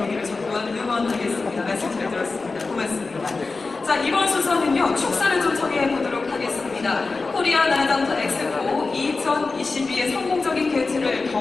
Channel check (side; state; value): right; quieter; 3.9 dB